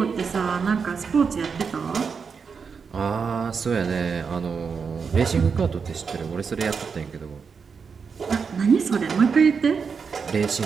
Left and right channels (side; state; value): left; quieter; 5.7 dB